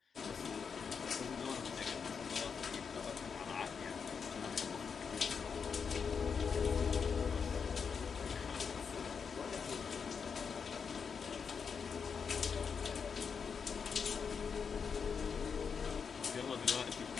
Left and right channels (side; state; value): right; quieter; 6.1 dB